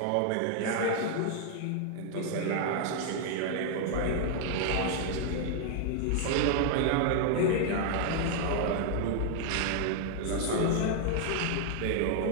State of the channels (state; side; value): different; both; correlation 0.00